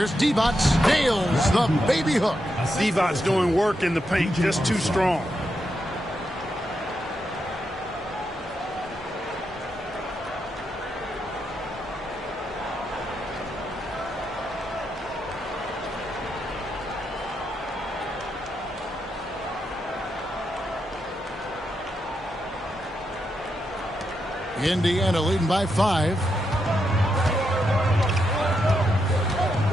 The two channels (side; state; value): both; normal; correlation 0.83